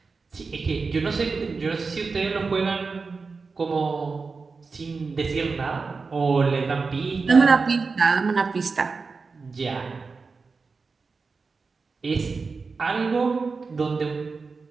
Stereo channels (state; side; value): quieter; left; 4.5 dB